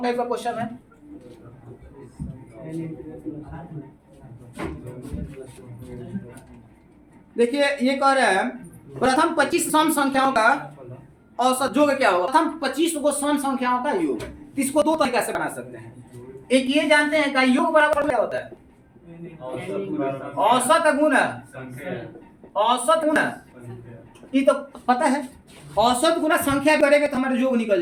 टाइप का क्वेश्चन है। देखिए ये कह रहे हैं प्रथम 25 सम संख्याओं का औसत योग क्या होगा? प्रथम 25 को सम संख्याओं का योग। इसको 2 तरीके से बना सकते हैं। एक ये जानते हैं कि योग बराबर क्या होता है? औसत गुना औसत गुना, ये तो पता है। औसत गुना संख्या करेंगे तो हमारा योग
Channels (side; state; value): both; identical; correlation 1.00